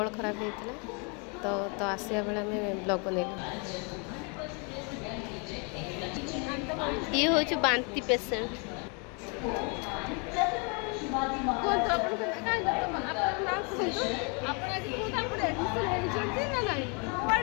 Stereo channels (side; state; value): right; quieter; 34.7 dB